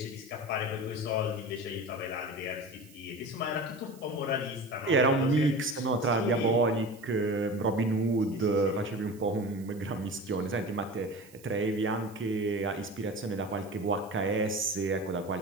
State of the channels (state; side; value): noise; right; hiss, 24 dB below the sound